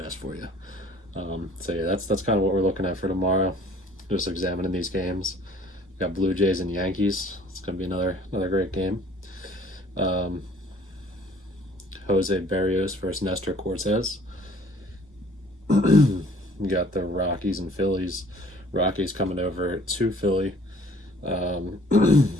for you. So yeah, that's kind of what we're looking at for tomorrow. Just examining these games. We got Blue Jays and Yankees. It's going to be another great game. Jose Berrios versus Nestor Cortez. You got the Rockies and Phillies. Rockies coming over to Philly.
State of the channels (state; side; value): normal; both; correlation 0.55